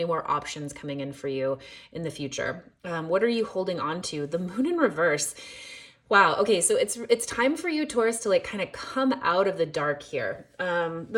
more options coming in for you in the future. What are you holding on to? The Moon in reverse. Wow. Okay. So it's time for you, Taurus, to like kind of come out of the dark here.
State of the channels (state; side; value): identical; both; correlation 1.00